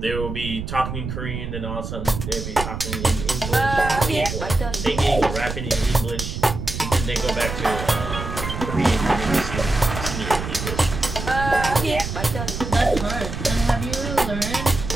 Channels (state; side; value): noise; right; rumble, 6 dB below the sound